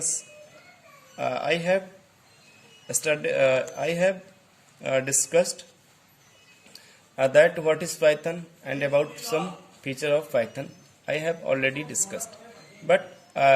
I have discussed that what is Python and about some feature of Python I have already discussed. But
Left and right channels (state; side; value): identical; both; correlation 1.00